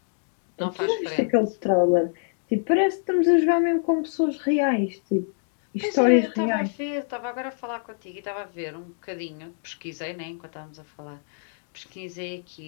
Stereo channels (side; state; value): right; silent; digital silence